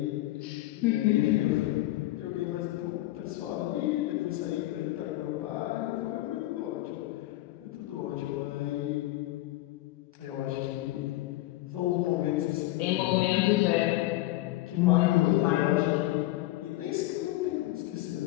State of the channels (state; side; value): quieter; right; 17.2 dB